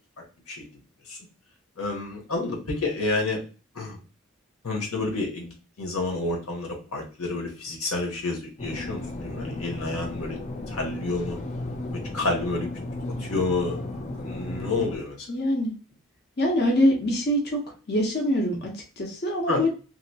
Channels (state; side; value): normal; both; correlation 0.44